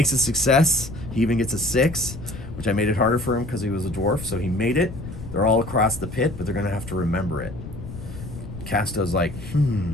a success. He even gets a 6, which I made it harder for him because he was a dwarf, so he made it. They're all across the pit, but they're going to have to remember it. Casto's like,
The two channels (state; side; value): noise; left; rumble, 11 dB below the sound